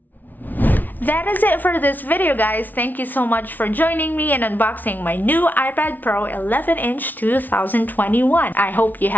That is it for this video, guys. Thank you so much for joining me in unboxing my new iPad Pro 11-inch 2021. I hope you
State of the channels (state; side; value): late; right; 0.083 ms